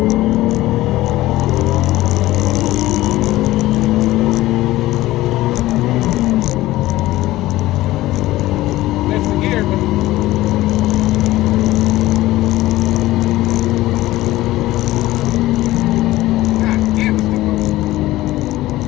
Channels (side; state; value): right; quieter; 16.8 dB